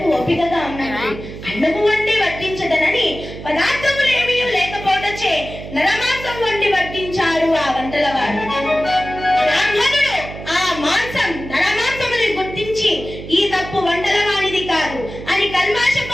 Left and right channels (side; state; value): right; noise; hum, 12 dB below the sound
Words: ఓపికగా ఉన్నది, అన్నము వండి వడ్డించదనని పదార్థములేమీ లేకపోవటచే నరమాంసం వండి వడ్డించాడు ఆ వంటలవాడు. బ్రాహ్మణుడు ఆ మాంసం నరమాంసముని గుర్తించి, ఈ తప్పు వంటలవాడిది కాదు అని